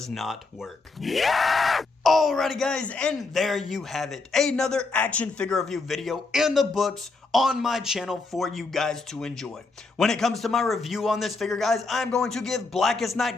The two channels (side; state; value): right; quieter; 3.8 dB